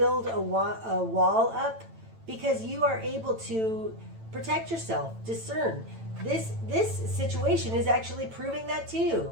a wall up because you are able to protect yourself, discern. This situation is actually proving that to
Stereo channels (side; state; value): left; late; 9.0 ms